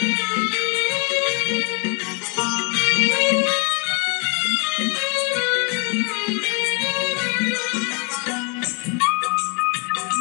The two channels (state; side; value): quieter; right; 31.4 dB